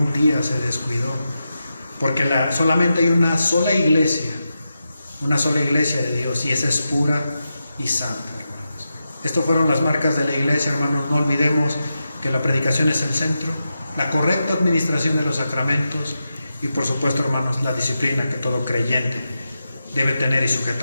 día se descuidó. Porque solamente hay una sola iglesia de Dios, y esa es pura y santa, hermanos. Estas fueron las marcas de la iglesia, hermanos. No olvidemos que la predicación es el centro, la correcta administración de los sacramentos y, por supuesto, hermanos, la disciplina que todo creyente debe tener y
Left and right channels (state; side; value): inverted; both; correlation -0.89